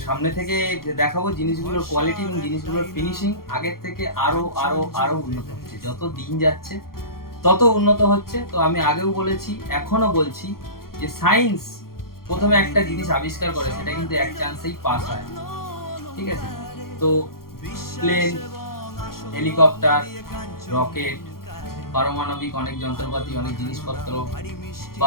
সামনে থেকে দেখাবো জিনিসগুলোর কোয়ালিটি এবং জিনিসগুলোর ফিনিশিং আগের থেকে আরো আরো আরো উন্নত হচ্ছে। যত দিন যাচ্ছে তত উন্নত হচ্ছে। তো আমি আগেও বলেছি, এখনো বলছি যে সায়েন্স প্রথমে একটা জিনিস আবিষ্কার করে, সেটা কিন্তু এক চান্সেই পাস হয়, ঠিক আছে? তো প্লেন, হেলিকপ্টার, রকেট, পারমাণবিক অনেক যন্ত্রপাতি, অনেক জিনিসপত্র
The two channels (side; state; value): right; late; 0.92 ms